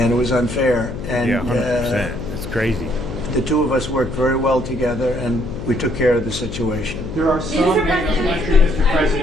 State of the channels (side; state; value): left; noise; hum, 8 dB below the sound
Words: it was unfair. And Yeah, 100%. That's crazy. the two of us worked very well together, and we took care of the situation. There are some Mr.